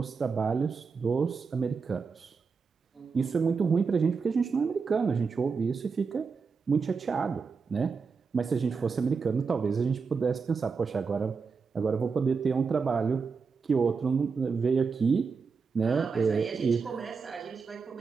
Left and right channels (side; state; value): left; quieter; 5.2 dB